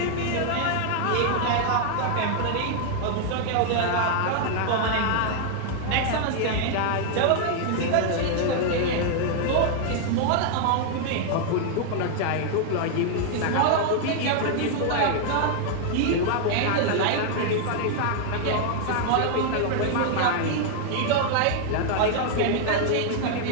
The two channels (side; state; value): both; different; correlation 0.00